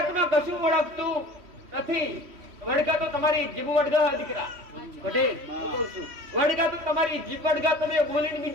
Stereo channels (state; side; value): late; left; 3.1 ms